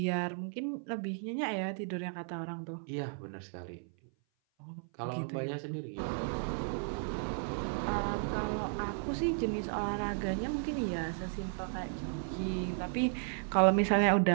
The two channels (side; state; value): left; silent; 55 dB below the other